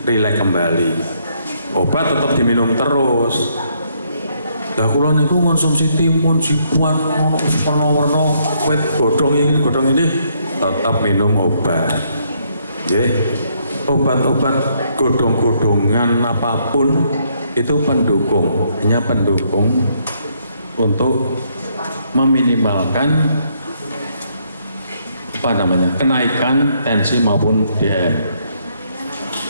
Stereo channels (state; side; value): inverted; both; correlation -0.72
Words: rileks kembali. Obat tetap diminum terus. Lah kula niku konsumsi timun, jibuan, warna-warna, wit godhong ini tetap minum obat. Nggih, obat-obat godhong-godhongan apapun itu pendukung, hanya pendukung untuk meminimalkan kenaikan tensi maupun DM.